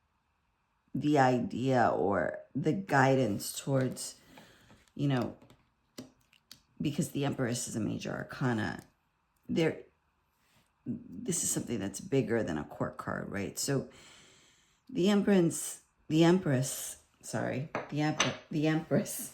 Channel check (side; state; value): both; identical; correlation 1.00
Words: the idea or the guidance towards, you know, because the Empress is a major arcana, this is something that's bigger than a court card, right? So the Empress,